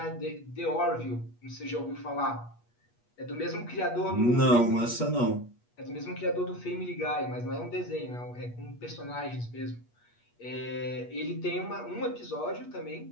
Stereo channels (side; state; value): right; late; 8.3 ms